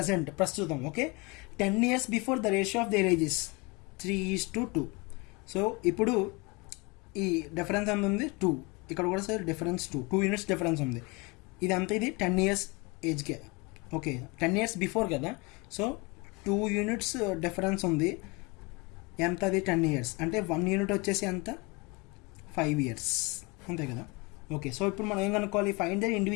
ప్రస్తుతం. Okay, 10 years before the ratio of their age is 3:2. So ఇప్పుడు ఈ difference ఎంత ఉంది, 2. ఇక్కడ కూడా సార్ డిఫరెన్స్ 2 units డిఫరెన్స్ ఉంది. ఇదంతా ఇది 10 years ఏజ్కే. ఓకే, 10 years బిఫోర్ కదా, సో 2 units డిఫరెన్స్ ఉంది. ఎంత అది 10 years అంటే 1 unit వచ్చేసి ఎంత 5 years, అంతే కదా. ఓకే, సో ఇప్పుడు మనం ఏం కనుక్కోవాలి, find the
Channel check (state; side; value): quieter; right; 27.5 dB